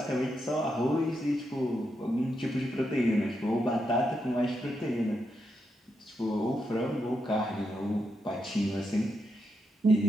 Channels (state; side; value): normal; both; correlation 0.83